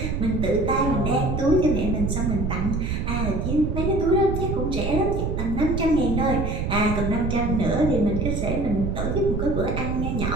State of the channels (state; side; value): noise; right; rumble, 1 dB below the sound